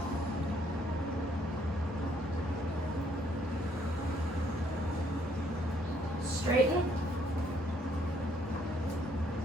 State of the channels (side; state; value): both; normal; correlation 0.68